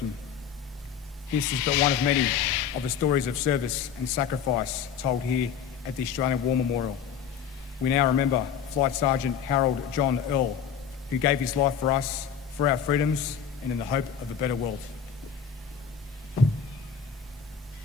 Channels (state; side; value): quieter; right; 7.5 dB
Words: This is but one of many of the stories of service and sacrifice told here at the Australian War Memorial. We now remember Flight Sergeant Harold John Earl, who gave his life for us, for our freedoms, and in the hope of a better world.